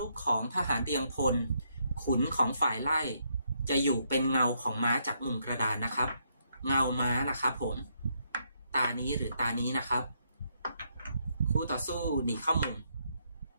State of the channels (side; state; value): both; inverted; correlation -0.75